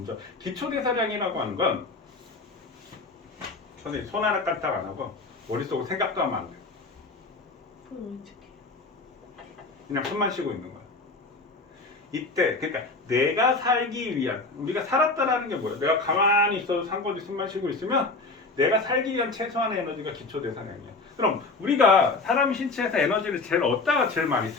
기초대사량이라고 하는 건 선생님 손 하나 까딱 안 하고 머릿속으로 생각도 하면 안 돼. 그럼 어떻게? 그냥 숨만 쉬고 있는 거야. 이때 그러니까 내가 살기 위한, 우리가 살았다라는 게 뭐야? 내가 가만히 있어도 상관없이 숨만 쉬고 있으면 내가 살기 위한 최소한의 에너지가 기초대사량이야. 그럼 우리가 사람 신체에서 에너지를 제일 얻다가 제일 많이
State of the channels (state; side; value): quieter; right; 3.6 dB